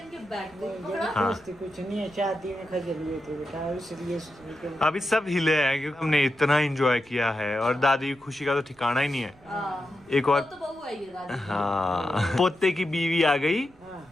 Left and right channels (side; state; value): right; noise; rumble, 28 dB below the sound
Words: बैग को भी पकड़ा। हाँ। कुछ नहीं है, शादी में खजल हुए थे बेटा, इसलिए अभी सब हिले हैं क्योंकि हमने इतना एंजॉय किया है और दादी की खुशी का तो ठिकाना ही नहीं है। एक और तो बहू आई है दादी। हाँ, पोते की बीवी आ गई। हाँ।